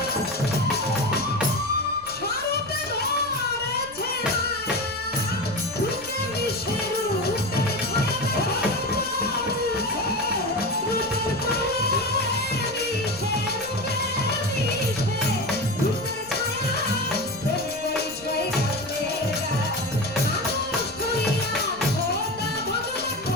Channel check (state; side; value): noise; left; rumble, 22 dB below the sound